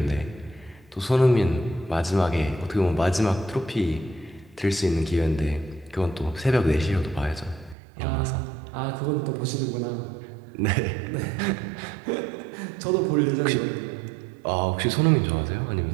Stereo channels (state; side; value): drops out; left; at 7.8 s